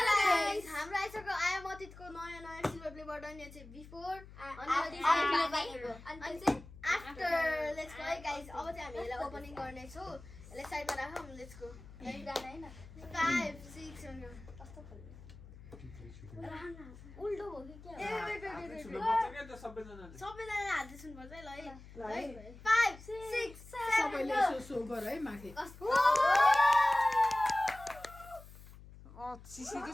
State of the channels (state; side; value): noise; left; hum, 18 dB below the sound